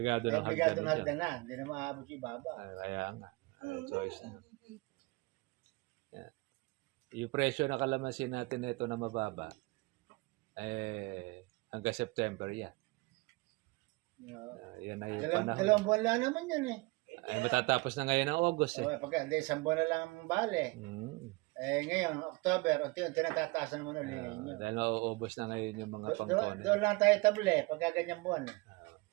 ng Obligado na hagdan. hagdan na. Hindi na maabot yung ibaba. Kaya nga. Choice na. Yan. Yung presyo ng kalamansi natin na ito na mababa, hanggang September yan. Yan ay panahon. Dalawang buwan lang naman yan eh. Ay matatapos na ngayon ng August Pagka, hindi, isang buwan na lang ang bale. Ngayon, October, unti-unti natataasan naman ulit ninyo. Dahil mauubos na ngayon yung mga pangkone. Doon lang tayo table pagka ganyang buwan.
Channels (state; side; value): quieter; left; 24.7 dB